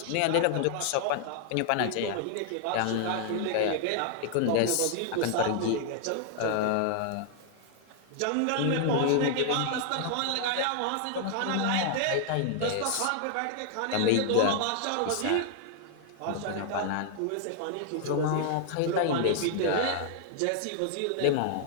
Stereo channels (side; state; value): both; different; correlation 0.00